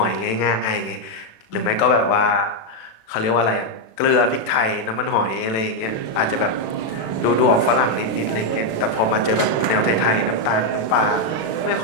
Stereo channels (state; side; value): late; right; 36 ms